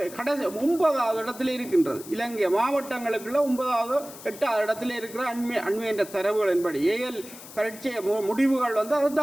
கடைசி 9வது இடத்துல இருக்கின்றது. இலங்கை மாவட்டங்களுக்குள்ள 9வது 8வது இடத்துல இருக்கிற அண்மை என்ற தரவுகளின்படி ஏஎல் பரீட்சை முடிவுகள் அதை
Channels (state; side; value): noise; left; hiss, 16 dB below the sound